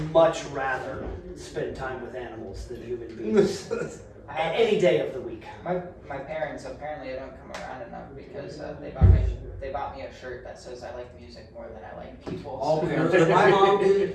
much rather spend time with animals than human beings. Any day of the week. My parents, apparently I don't come around enough because they bought me a shirt that says I like music more than I like people. All so- parents. My mom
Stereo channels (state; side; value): identical; both; correlation 1.00